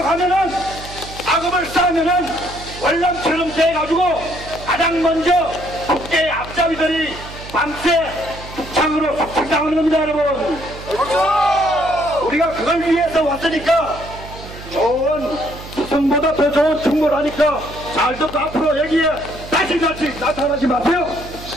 악업을 쌓으면은 월남처럼 돼가지고 가장 먼저 국제의 앞잡이들이 밤새 북창으로 속상당하는 겁니다, 여러분. 우리가 그걸 위해서 왔으니까 좋은 수성보다 더 좋은 충고를 하니까 잘 듣고 앞으로 여기에 다시 나타나지 마세요.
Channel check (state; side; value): noise; right; hum, 14 dB below the sound